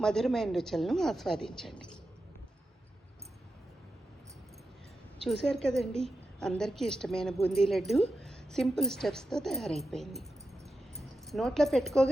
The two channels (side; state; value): both; normal; correlation 0.89